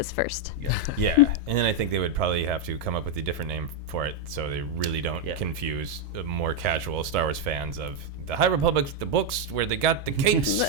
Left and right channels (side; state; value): both; normal; correlation 0.01